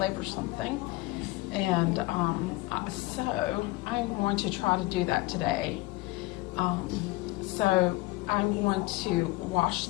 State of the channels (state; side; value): quieter; right; 20.5 dB